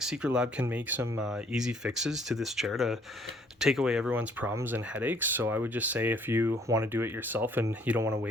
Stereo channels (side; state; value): both; normal; correlation 0.62